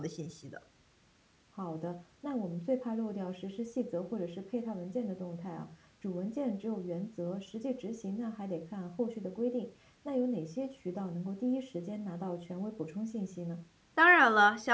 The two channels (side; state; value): both; identical; correlation 1.00